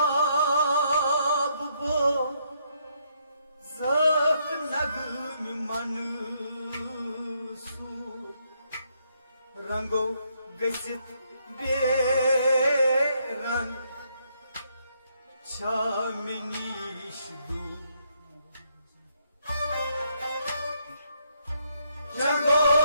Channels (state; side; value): inverted; both; correlation -0.73